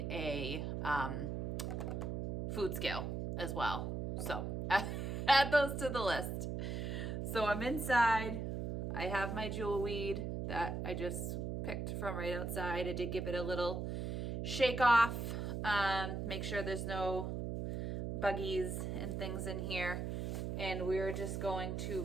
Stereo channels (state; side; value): noise; right; hum, 2 dB below the sound